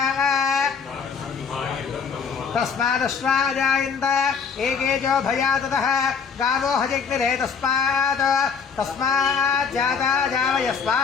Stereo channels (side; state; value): right; quieter; 6.1 dB